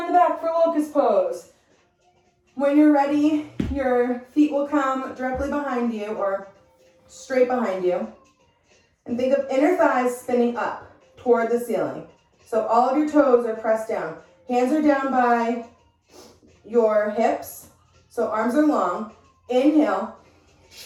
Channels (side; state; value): both; identical; correlation 1.00